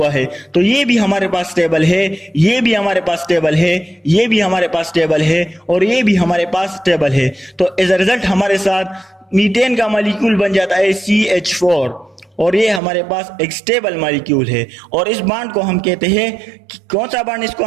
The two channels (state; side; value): drops out; left; at 12.8 s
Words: है। तो ये भी हमारे पास स्टेबल है, ये भी हमारे पास स्टेबल है, ये भी हमारे पास स्टेबल है और ये भी हमारे पास स्टेबल है। तो एज अ रिजल्ट हमारे साथ मीथेन का मॉलिक्यूल बन जाता है CH4 और ये हमारे पास एक स्टेबल मॉलिक्यूल है। और इस बॉन्ड को हम कहते हैं, कौन सा बॉन्ड? इसको